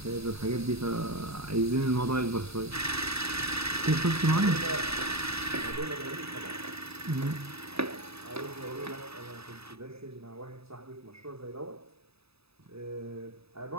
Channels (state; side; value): late; left; 0.78 ms